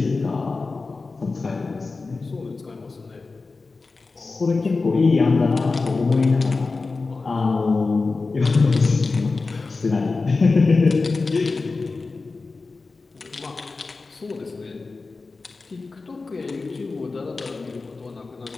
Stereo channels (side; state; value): right; quieter; 3.9 dB